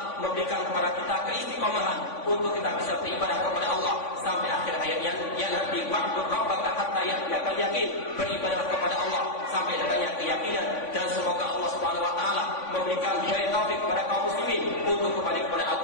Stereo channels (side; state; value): right; late; 3.5 ms